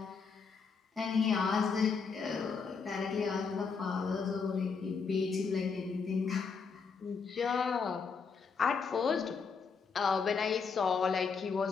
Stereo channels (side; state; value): right; quieter; 5.4 dB